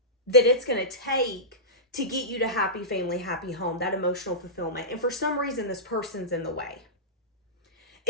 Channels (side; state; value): both; normal; correlation -0.18